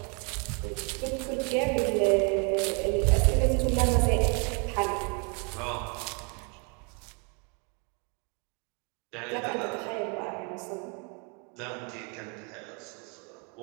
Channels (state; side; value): quieter; left; 34.8 dB